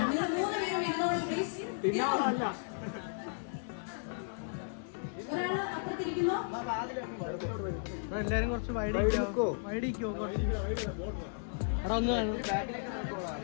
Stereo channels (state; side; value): silent; right; digital silence